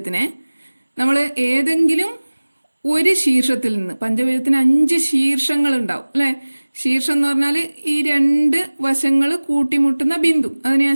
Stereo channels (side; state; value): both; inverted; correlation -1.00